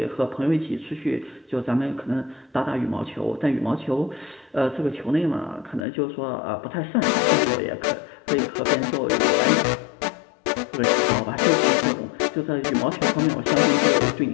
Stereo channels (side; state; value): right; drops out; at 5.9 s